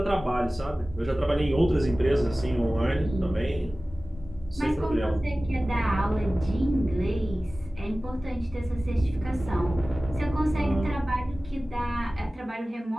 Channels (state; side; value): normal; both; correlation 0.97